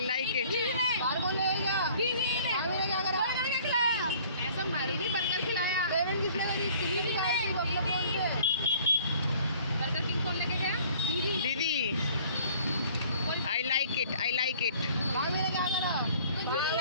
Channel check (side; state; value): both; inverted; correlation -0.53